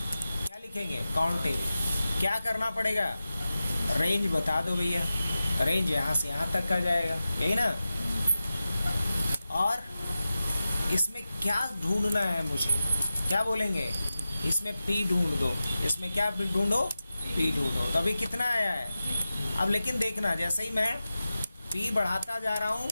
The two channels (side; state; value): both; inverted; correlation -0.94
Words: लिखेंगे? Count F. क्या करना पड़ेगा? रेंज बता दो भैया। रेंज यहाँ से यहाँ तक का जाएगा, यही ना? और इसमें क्या ढूंढना है मुझे? क्या बोलेंगे? इसमें पी ढूंढ दो। इसमें क्या ढूंढो? पी ढूंढो। तो अभी कितना आया है? अब लेकिन देखना, जैसे ही मैं पी बढ़ाता जा रहा हूँ,